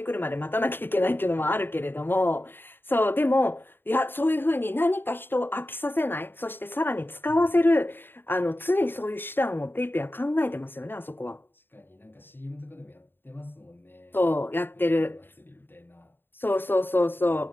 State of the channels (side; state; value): right; late; 0.099 ms